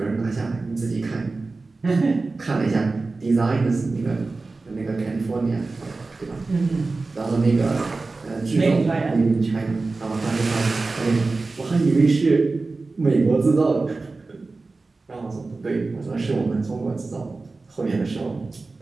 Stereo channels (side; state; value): left; quieter; 3.7 dB